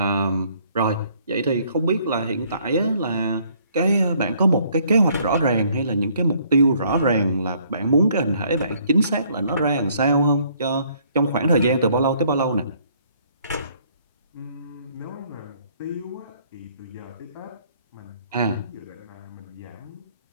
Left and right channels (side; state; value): both; inverted; correlation -0.64